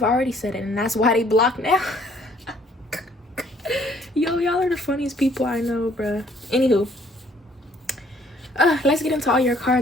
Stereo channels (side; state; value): both; normal; correlation 0.62